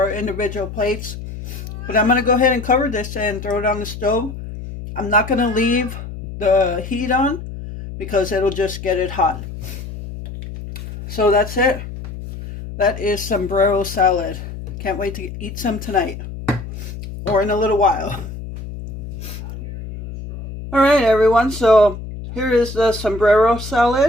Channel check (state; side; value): noise; left; hum, 10 dB below the sound